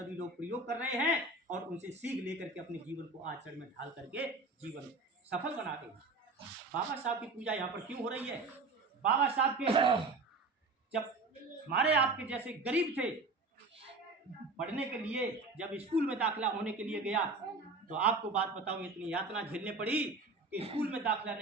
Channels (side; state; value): left; quieter; 3.5 dB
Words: लोग प्रयोग कर रहे हैं और उनसे सीख लेकर के अपने जीवन को आचरण में ढाल करके जीवन सफल बनाते हैं। बाबा साहब की पूजा यहाँ पर क्यों हो रही है? बाबा साहब के जब हमारे आपके जैसे गरीब थे, पढ़ने के लिए जब स्कूल में दाखिला होने के लिए गया, तो आपको बात बताऊं, इतनी यातना झेलने पड़ी कि स्कूल में दाखिला